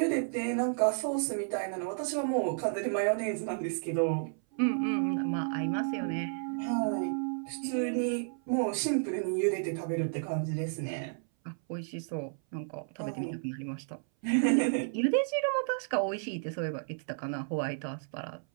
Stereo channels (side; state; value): left; silent; 56 dB below the other